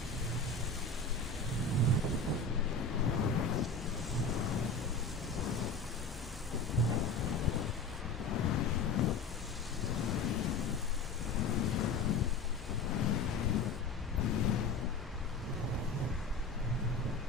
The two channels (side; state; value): right; quieter; 3.9 dB